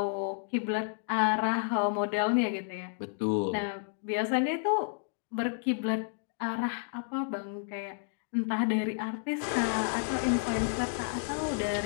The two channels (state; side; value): silent; right; digital silence